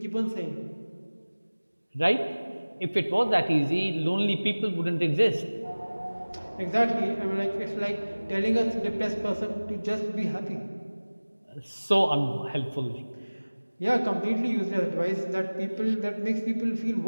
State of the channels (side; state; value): both; inverted; correlation -1.00